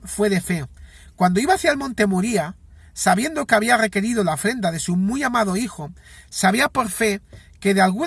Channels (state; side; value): identical; both; correlation 1.00